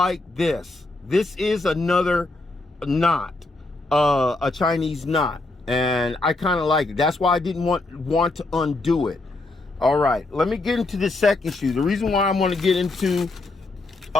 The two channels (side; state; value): right; quieter; 3.1 dB